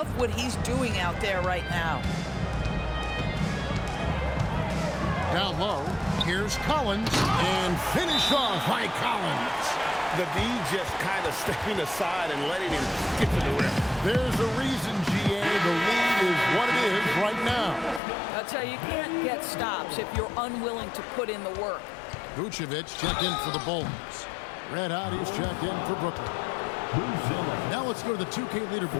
what he's doing out there right now. Down low. Here's Collins. And finished off by Collins. The D just kind of stepping aside and letting him get to the rim. There's a reason, GA. The lead is what it is right now. I'll tell you, you can't get stops if you're unwilling to put in the work. Vucevic checked in for the Bulls. Red Hot is checked in for Brooklyn. Now let's go to the 2K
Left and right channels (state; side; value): drops out; right; at 18.0 s